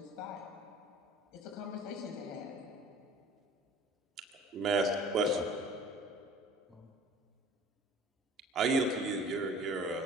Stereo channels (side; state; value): both; normal; correlation 0.46